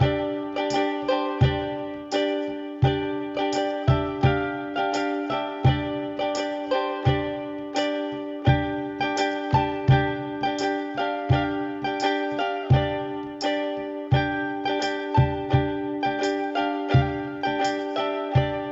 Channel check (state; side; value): identical; both; correlation 1.00